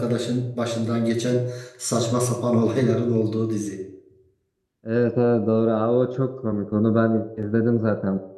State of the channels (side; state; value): both; identical; correlation 1.00